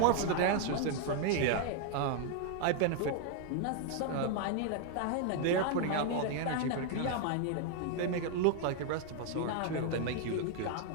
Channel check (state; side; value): different; both; correlation 0.00